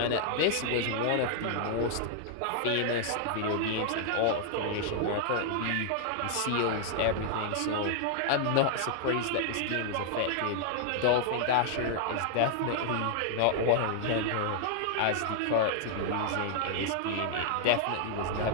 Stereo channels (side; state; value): both; different; correlation -0.01